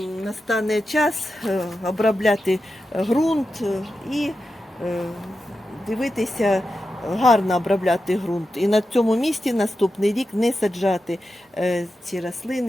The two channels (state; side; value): normal; both; correlation 0.90